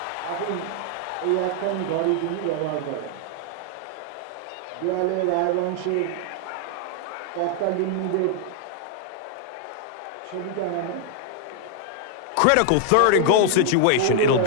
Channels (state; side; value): different; both; correlation 0.00